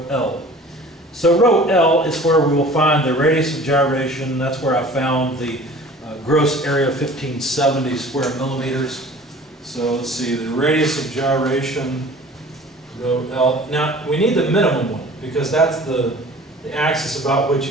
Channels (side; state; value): both; normal; correlation 0.45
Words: L. So row L is where we will find the radius of gyration. That's where I found the gross area of 1570 square millimeters. So let's see, the radius of gyration, row L. Now, we need the minimum one, because that's the axis about